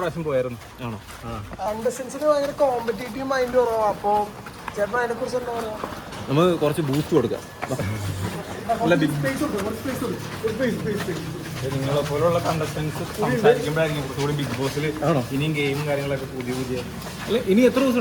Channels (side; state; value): both; identical; correlation 1.00